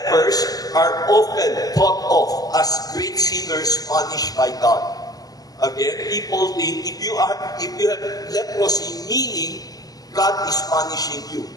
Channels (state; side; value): late; right; 0.18 ms